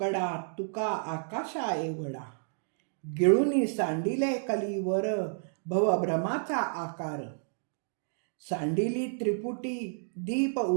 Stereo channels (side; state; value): left; silent; digital silence